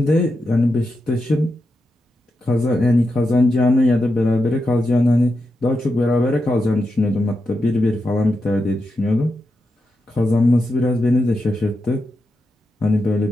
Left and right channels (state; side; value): normal; both; correlation 0.87